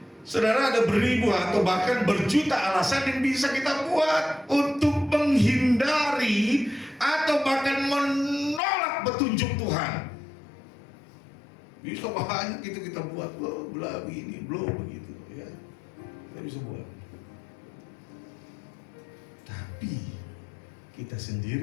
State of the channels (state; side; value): drops out; right; at 8.6 s